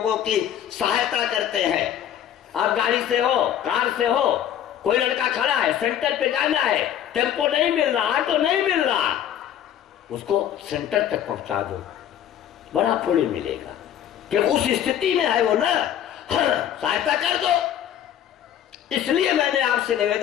की सहायता करते हैं। आप गाड़ी से हो, कार से हो, कोई लड़का खड़ा है, सेंटर पे जाना है, टेम्पो नहीं मिल रहा, ऑटो नहीं मिल रहा, उसको सेंटर तक पहुंचा दो, बड़ा पुण्य मिलेगा। कि उस स्थिति में है वो ना, सहायता कर दो। इसलिए मैंने आपसे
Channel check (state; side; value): quieter; right; 10.5 dB